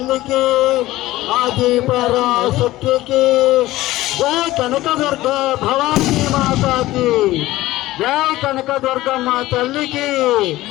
की आदि पराशक्ति की जय कनकदुर्गा भवानी माता की जय कनकदुर्गम्मा तल्ली की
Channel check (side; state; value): right; quieter; 16.9 dB